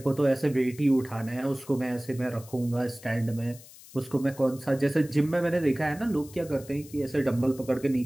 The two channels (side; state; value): left; noise; hiss, 20 dB below the sound